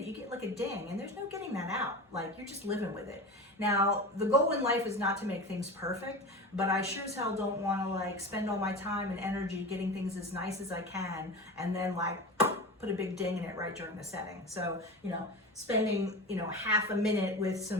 you get like a ding, and there's no getting that out. Like, you're just living with it. Now, the goal in life is not to make things perfect, but I sure as hell don't want to like spend all my time and energy getting things as nice as I can and then like put a big ding in it right during the setting. So, you know, spending, you know, half a minute with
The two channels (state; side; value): normal; both; correlation 0.29